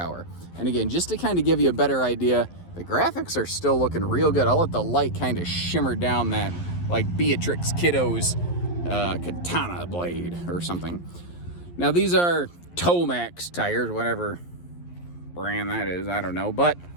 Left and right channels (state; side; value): late; right; 11 ms